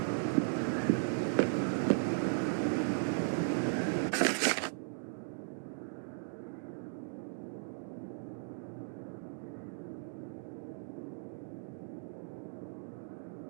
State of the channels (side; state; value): left; silent; 53 dB below the other